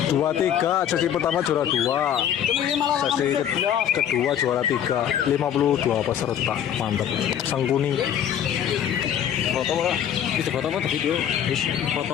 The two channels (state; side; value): quieter; right; 9.7 dB